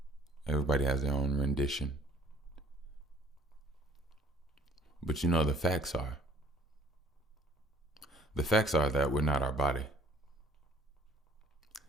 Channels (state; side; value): normal; both; correlation 0.56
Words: Everybody has their own rendition. But you know, the facts are that we're not our body.